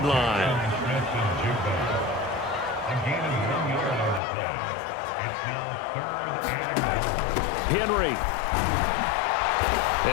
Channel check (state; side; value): drops out; right; at 4.2 s